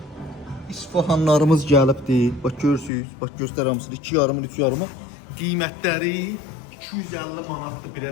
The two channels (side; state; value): right; drops out; at 2.9 s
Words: İsfahanlarımız gəlibdi. Bax görürsüz. Bax göstər hamısını 2,5 3,5. Qiymətləri 250 manatdır bir